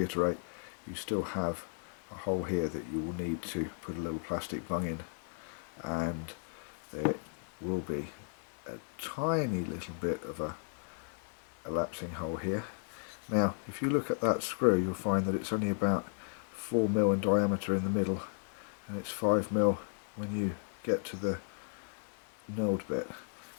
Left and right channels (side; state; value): right; silent; digital silence